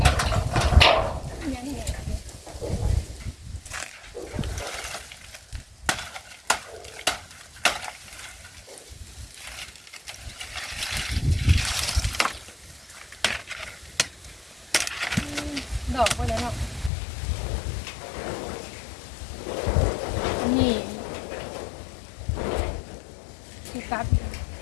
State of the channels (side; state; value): right; drops out; at 16.9 s